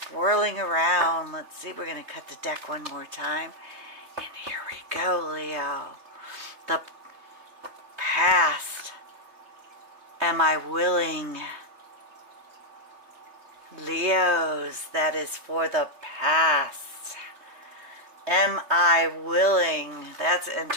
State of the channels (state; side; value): late; left; 3.2 ms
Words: swirling around. Let's see. We're going to cut the deck one more time. And here we go, Leo. The past. Am I willing? Leos, that is for the past. Am I willing? That's